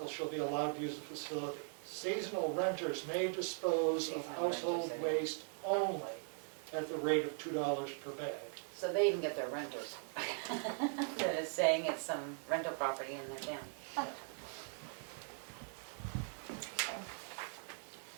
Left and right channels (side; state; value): left; silent; 51 dB below the other